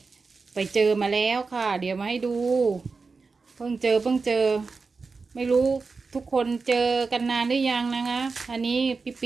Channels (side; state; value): left; quieter; 4.4 dB